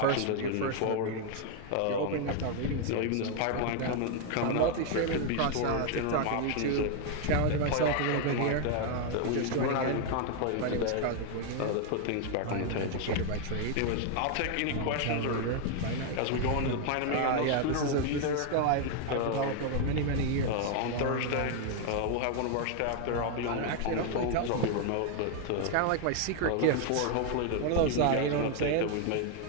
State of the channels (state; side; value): different; both; correlation 0.00